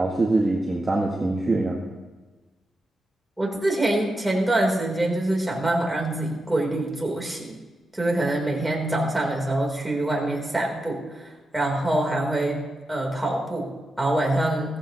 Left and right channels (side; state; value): both; normal; correlation 0.88